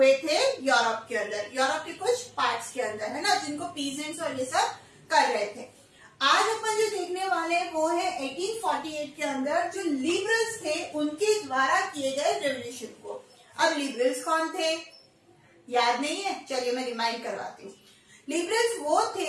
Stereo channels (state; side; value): identical; both; correlation 1.00